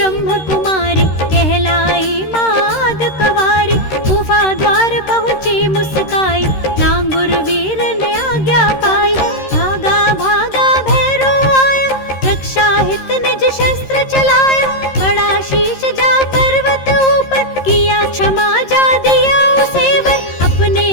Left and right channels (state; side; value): late; right; 13 ms